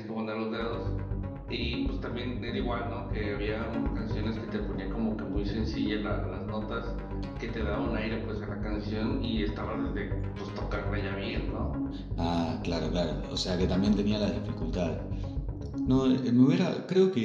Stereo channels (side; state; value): both; identical; correlation 1.00